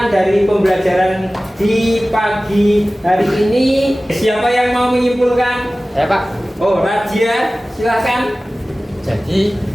dari pembelajaran di pagi hari ini? Siapa yang mau menyimpulkan? Saya Pak. Oh, Radia, silakan. Jadi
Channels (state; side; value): normal; both; correlation 0.97